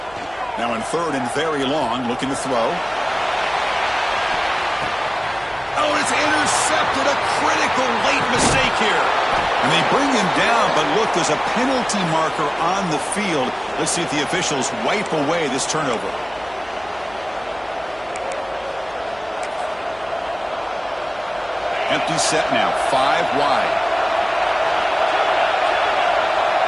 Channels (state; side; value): noise; left; hum, 26 dB below the sound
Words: Now in third and very long, looking to throw. Oh, it's intercepted. A critical late mistake here. And they bring him down, but look, there's a penalty marker on the field. Let's see if the officials wipe away this turnover. Empty set now, 5 wide.